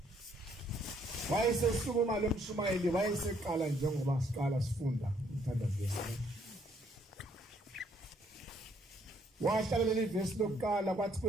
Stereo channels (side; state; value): both; normal; correlation 0.67